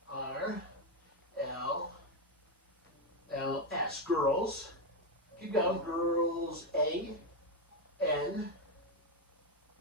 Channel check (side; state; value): both; normal; correlation 0.06